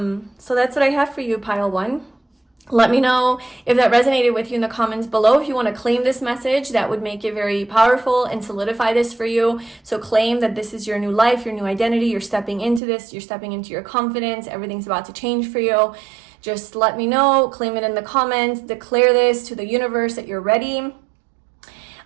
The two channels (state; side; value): drops out; left; at 12.8 s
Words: that's what I have for you, pile one. Let me know if that resonated with you in the comments below. If you want to claim this message, that would make it very powerful and solidify this for you. So claim that this is your new life, your new identity. You're stepping into this. You're stepping into your confidence. Everything's about to change for you. Just let me know. Claim it in the comments. Declare this to the universe that you're ready.